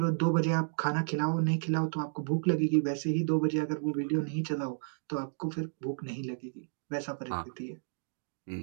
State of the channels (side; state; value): left; silent; digital silence